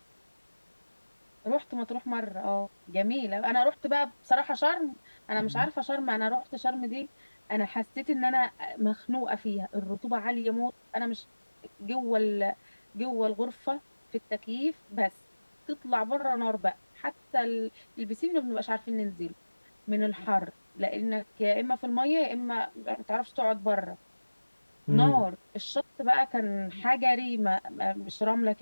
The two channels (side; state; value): both; inverted; correlation -1.00